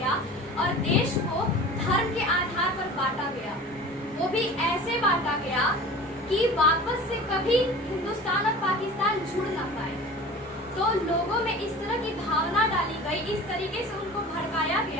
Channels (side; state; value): both; normal; correlation 0.39